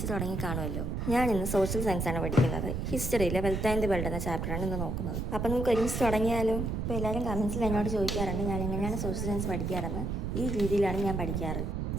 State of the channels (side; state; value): right; noise; rumble, 2 dB below the sound